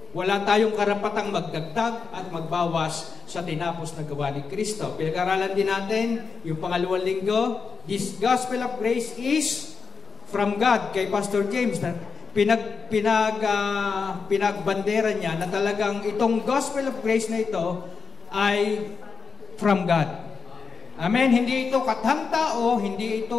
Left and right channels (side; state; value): right; quieter; 5.4 dB